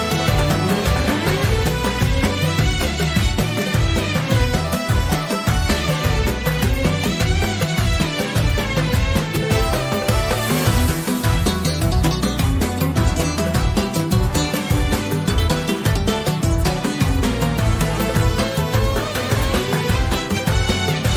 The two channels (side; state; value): both; identical; correlation 1.00